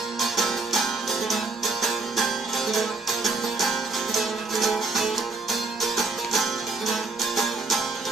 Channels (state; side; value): quieter; left; 3.8 dB